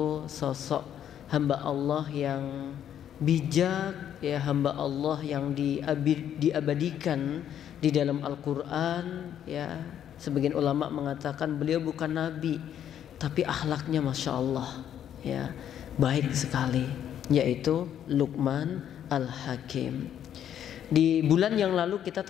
sosok hamba Allah yang bijak, ya, hamba Allah yang diabadikan di dalam Al-Quran, ya. Sebagian ulama mengatakan beliau bukan nabi, tapi akhlaknya masya Allah, ya, baik sekali, yaitu Luqman Al-Hakim. Di bulan yang lalu kita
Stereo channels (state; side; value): quieter; right; 9.9 dB